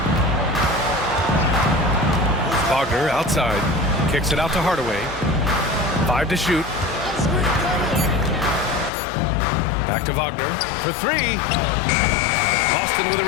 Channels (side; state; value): right; drops out; at 8.9 s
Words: Wagner outside. Kicks it out to Hardaway. 5 to shoot. Back to Wagner for 3. Boston with a